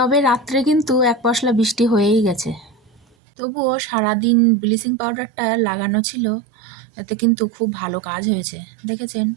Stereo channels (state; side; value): drops out; left; at 3.0 s